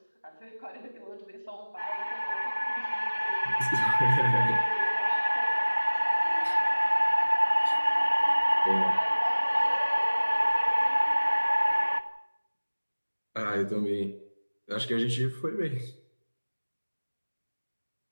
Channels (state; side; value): inverted; both; correlation -1.00